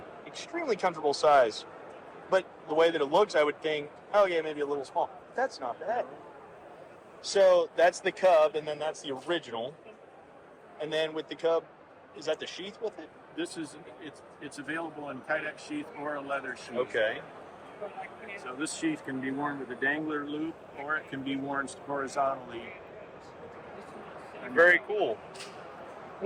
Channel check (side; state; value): both; identical; correlation 1.00